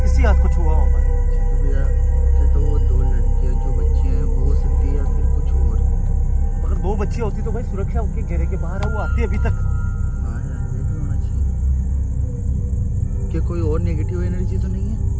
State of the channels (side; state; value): both; identical; correlation 1.00